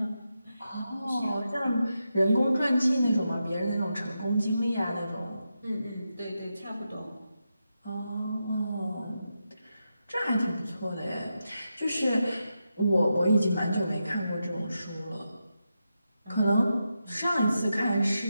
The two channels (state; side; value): inverted; both; correlation -0.87